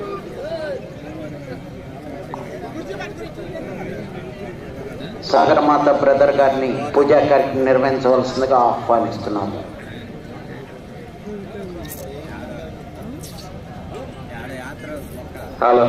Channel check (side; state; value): both; identical; correlation 1.00